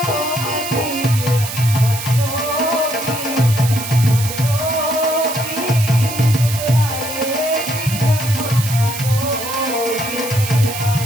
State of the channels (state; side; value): noise; right; hiss, 7 dB below the sound